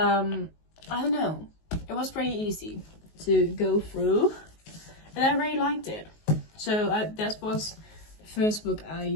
don't know, it was pretty easy to go through, and I really liked it. So that was first book I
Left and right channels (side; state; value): right; late; 19 ms